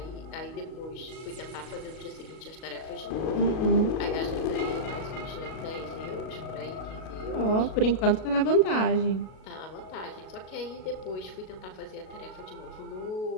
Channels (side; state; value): right; late; 37 ms